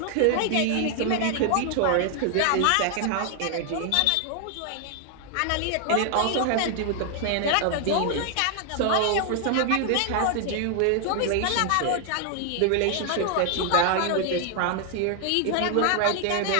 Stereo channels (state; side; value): different; both; correlation 0.00